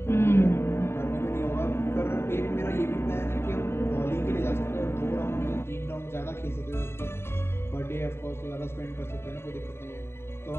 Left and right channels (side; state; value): right; late; 0.12 ms